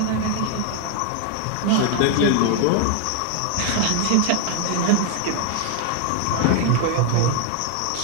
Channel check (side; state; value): both; different; correlation 0.00